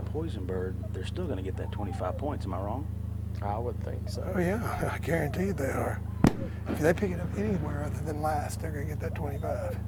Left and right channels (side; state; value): both; identical; correlation 1.00